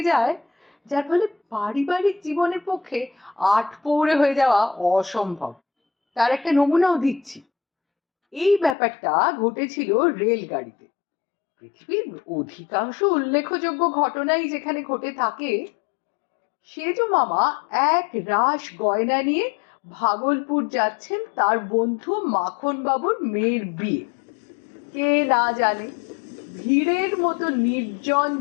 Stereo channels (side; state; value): right; drops out; at 8.8 s